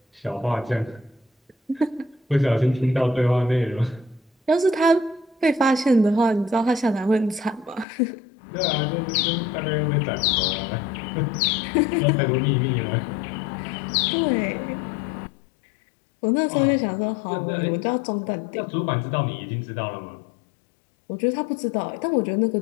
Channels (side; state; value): right; drops out; at 7.9 s